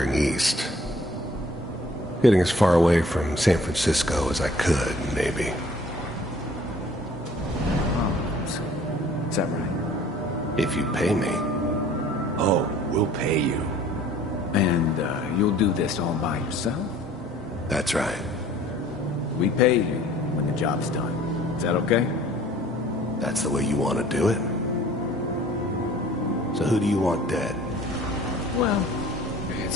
east. Getting as far away from San Francisco as I could, maybe. Is that right? If you pay me. Oh, we'll pay you. And, you'll do this all by yourself? That's right. We pay you when the job's done. Is that okay? That's the way you want to do it? So who do you want dead? Well,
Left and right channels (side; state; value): both; normal; correlation 0.52